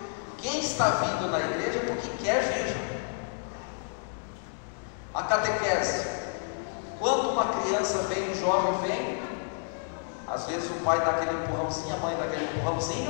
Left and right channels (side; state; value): right; silent; digital silence